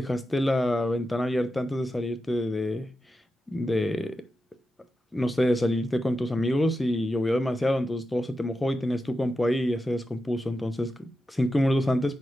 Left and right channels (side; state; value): both; normal; correlation 0.90